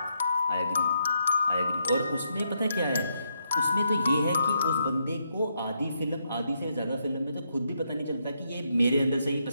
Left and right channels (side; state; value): both; inverted; correlation -0.78